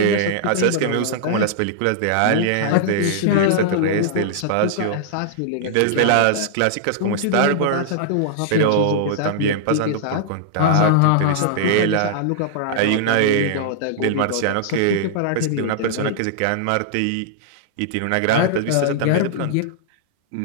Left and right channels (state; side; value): different; both; correlation -0.01